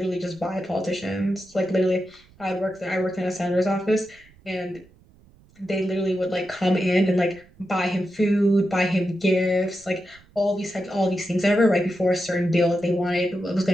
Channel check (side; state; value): right; noise; rumble, 28 dB below the sound